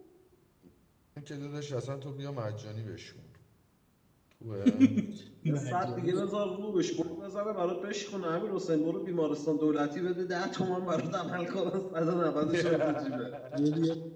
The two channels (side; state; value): both; identical; correlation 1.00